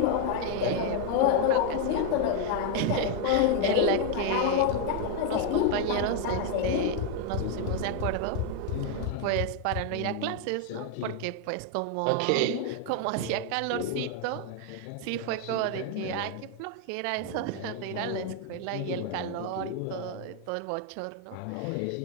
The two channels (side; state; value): both; different; correlation 0.01